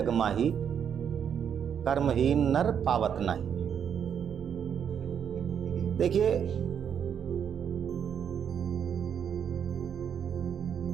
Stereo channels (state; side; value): quieter; left; 8.1 dB